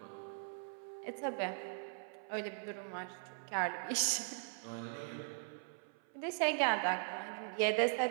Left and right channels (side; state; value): left; silent; 51 dB below the other